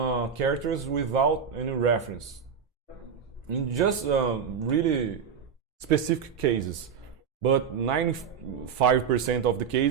without any reference. In just really specific cases, but 95% of the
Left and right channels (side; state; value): left; quieter; 7.0 dB